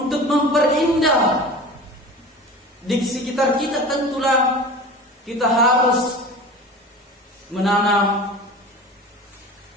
memperindah di sekitar kita, tentulah kita harus menanam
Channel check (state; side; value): normal; both; correlation 0.36